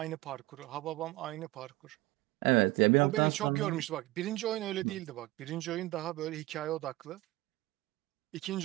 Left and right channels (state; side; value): quieter; left; 19.5 dB